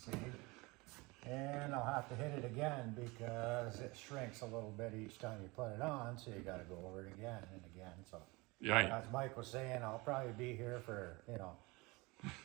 And I'll have to hit it again because it shrinks a little bit each time you put it on, so you gotta go over it again and again. So, Yeah. as Mike was saying, I'll probably be here for,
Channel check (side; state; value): left; quieter; 24.6 dB